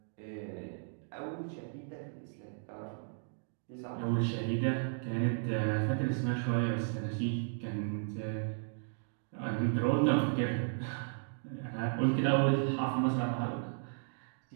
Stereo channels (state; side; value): silent; left; digital silence